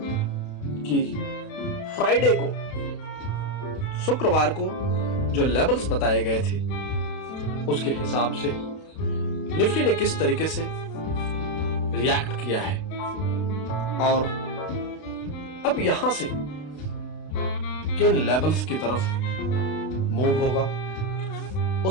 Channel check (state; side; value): late; right; 32 ms